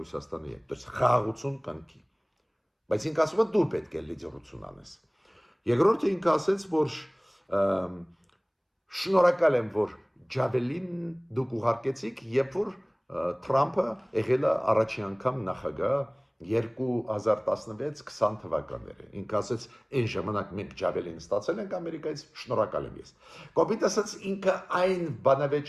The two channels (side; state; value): both; identical; correlation 1.00